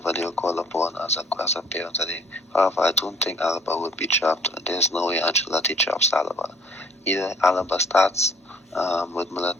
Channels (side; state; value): both; normal; correlation 0.57